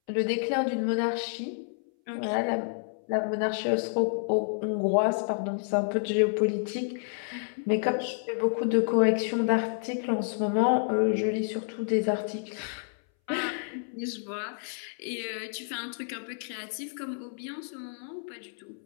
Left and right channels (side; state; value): right; silent; 58 dB below the other